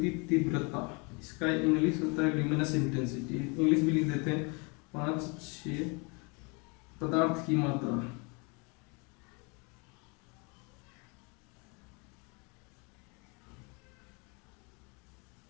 तीव्रता, इसका इंग्लिश होता है ल्यूमिनस इंटेंसिटी, इंग्लिश भी लिख देते हैं 5-6। पदार्थ की मात्रा,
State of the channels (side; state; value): right; quieter; 31.5 dB